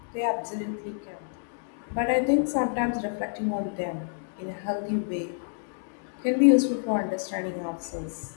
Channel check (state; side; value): silent; right; digital silence